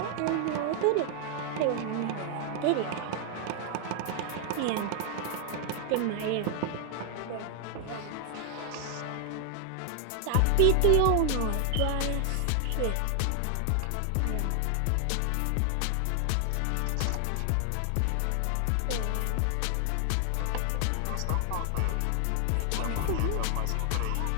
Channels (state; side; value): different; both; correlation 0.00